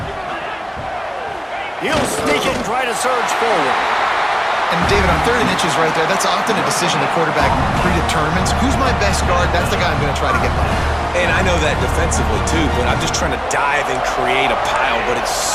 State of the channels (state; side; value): identical; both; correlation 1.00